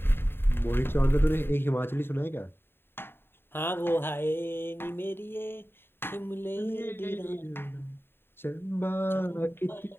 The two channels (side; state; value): right; late; 0.11 ms